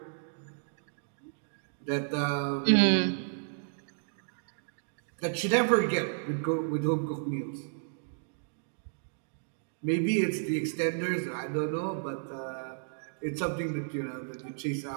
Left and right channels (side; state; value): left; silent; digital silence